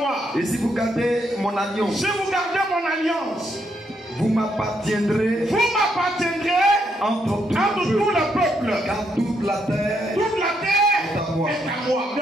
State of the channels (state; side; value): normal; both; correlation 0.76